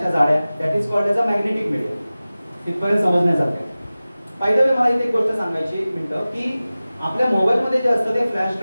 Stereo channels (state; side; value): inverted; both; correlation -0.97